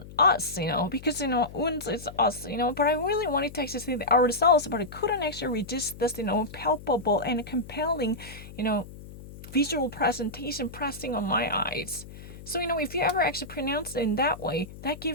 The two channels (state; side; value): noise; left; hum, 15 dB below the sound